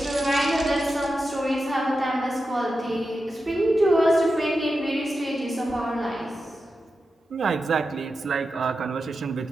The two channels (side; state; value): both; normal; correlation 0.90